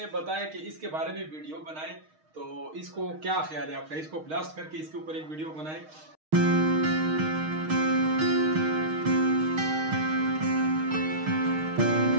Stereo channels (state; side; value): late; left; 6.4 ms